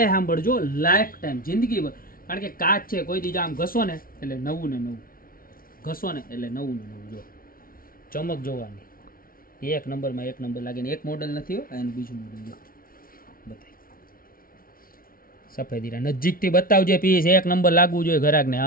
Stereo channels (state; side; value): late; right; 0.42 ms